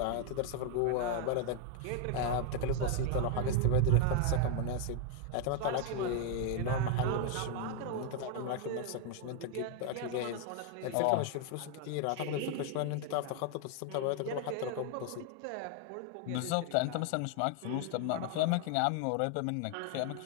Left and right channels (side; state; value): both; different; correlation 0.01